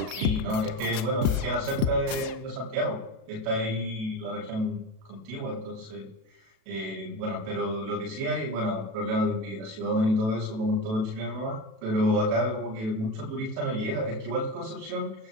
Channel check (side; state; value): left; late; 36 ms